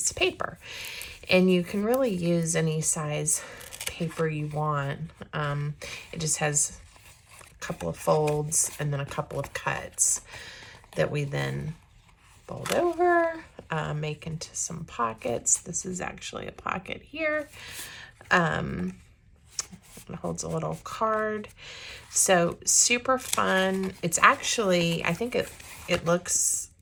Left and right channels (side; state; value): both; identical; correlation 1.00